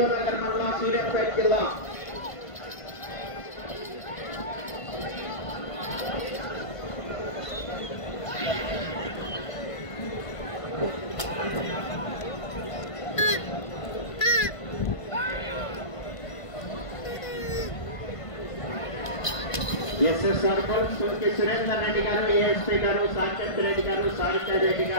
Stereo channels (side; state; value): right; late; 1.5 ms